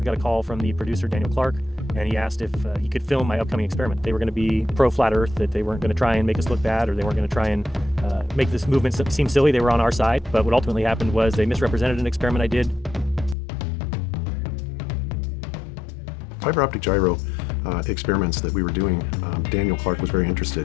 got a call from the producer, Daniel Clark, and he asked if he could film my upcoming experiment. They were going to be pro-flat Earth, that they weren't going to try and make us look bad, or they weren't going to try and make this movement seem silly. They were on our side. But what ultimately happened was they misrepresented an experiment I did. Fiber optic gyro experiments that we were doing, Daniel Clark was very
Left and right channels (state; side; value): drops out; right; at 13.4 s